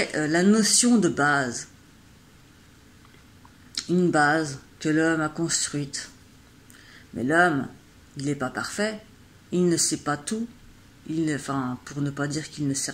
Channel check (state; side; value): identical; both; correlation 1.00